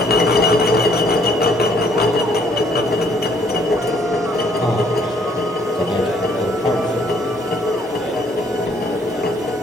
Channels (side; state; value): both; normal; correlation 0.64